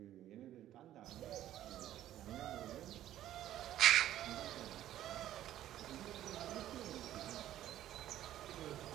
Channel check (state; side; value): quieter; left; 12.7 dB